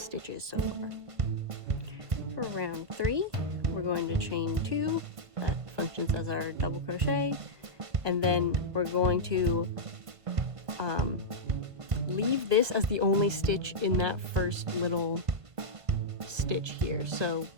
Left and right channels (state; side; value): late; left; 1.5 ms